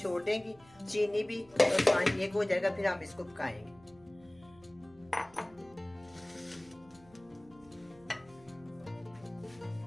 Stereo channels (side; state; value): right; noise; hum, 26 dB below the sound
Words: देंगी, चीनी भी, और पानी एक हो जाएगा, फिर हम इसको पकाएंगे।